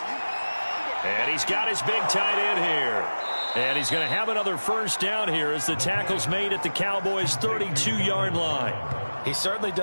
And he's got his big tight end here. And he's going to have another 1st down here as the tackle's made at the Cowboys' 32-yard line. He's certainly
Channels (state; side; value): inverted; both; correlation -1.00